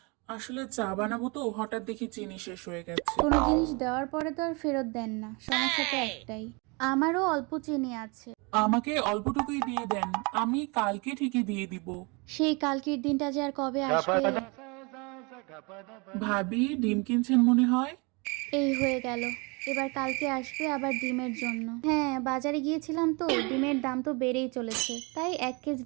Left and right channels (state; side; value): quieter; left; 29.7 dB